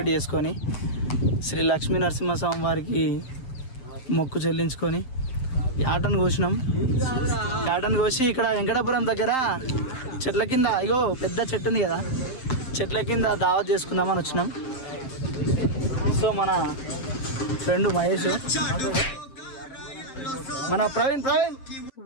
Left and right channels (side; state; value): right; late; 7.7 ms